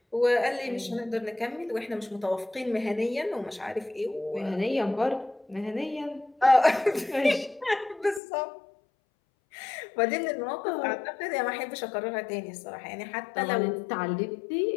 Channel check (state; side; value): drops out; right; at 8.2 s